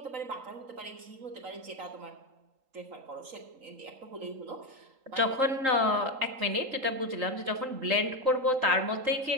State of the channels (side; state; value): left; late; 3.8 ms